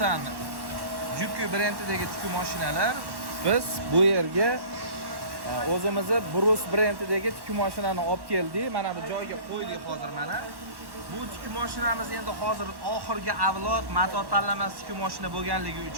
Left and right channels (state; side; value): late; left; 1.1 ms